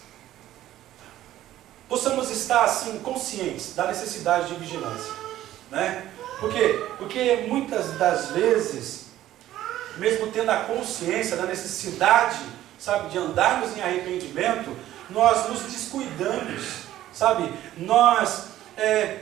possamos estar assim conscientes da necessidade de vigilância, né? Por quê? Porque muitas das vezes, mesmo tendo a consciência da necessidade, sabe, de andarmos em arrependimento, nós nos descuidamos, sabe? Nós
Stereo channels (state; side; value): quieter; left; 13.6 dB